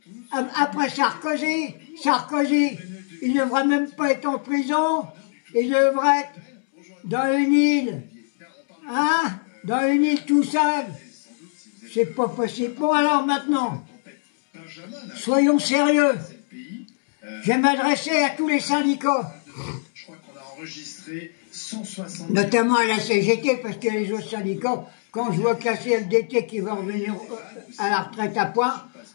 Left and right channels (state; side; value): silent; right; 63 dB below the other